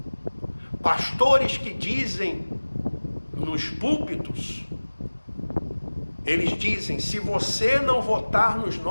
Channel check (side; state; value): both; inverted; correlation -1.00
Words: Pastores que dizem nos púlpitos, eles dizem: se você não votar nos